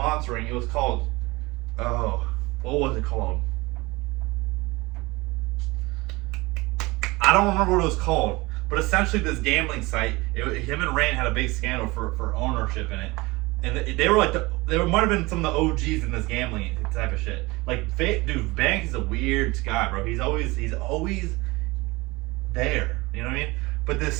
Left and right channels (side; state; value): left; quieter; 22.8 dB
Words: It was called, what was it called? I don't remember what it was called, But essentially, this gambling site, him and Rand had a big scandal for ownership in it, and they were like they might have been some of the OGs in this gambling type of shit. Like, dude, Banks is a weird guy, bro. He's always there. You know what I mean? But this